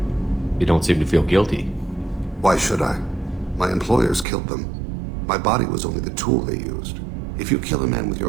You don't seem to feel guilty. Why should I? My employers killed them. My body was only the tool they used. If you kill a man with your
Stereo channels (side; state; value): left; drops out; at 4.2 s